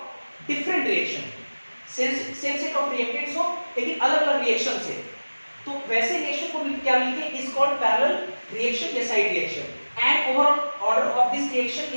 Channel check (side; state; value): both; inverted; correlation -1.00